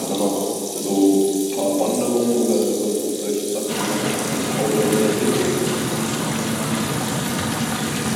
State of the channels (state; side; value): identical; both; correlation 1.00